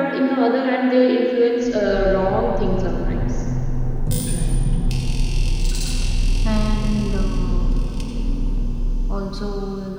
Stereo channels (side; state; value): both; identical; correlation 1.00